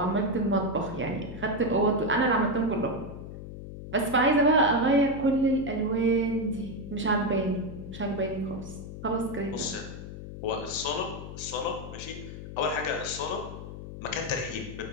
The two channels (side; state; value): left; noise; hum, 11 dB below the sound